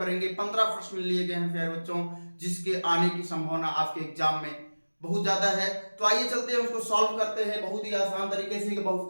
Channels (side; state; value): both; inverted; correlation -1.00